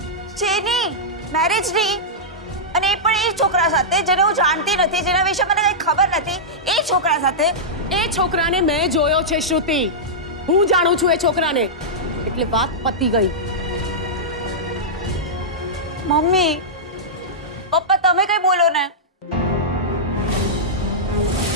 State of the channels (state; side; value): normal; both; correlation -0.11